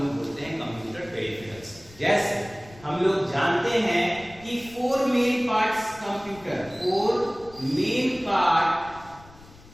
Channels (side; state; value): left; noise; rumble, 22 dB below the sound